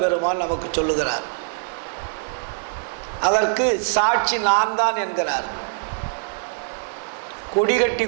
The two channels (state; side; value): silent; left; 61 dB below the other